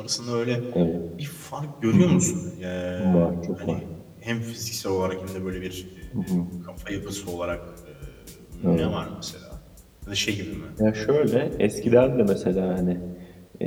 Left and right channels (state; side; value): identical; both; correlation 1.00